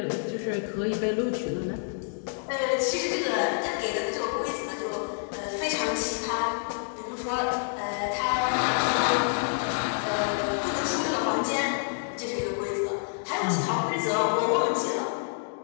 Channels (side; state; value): right; silent; digital silence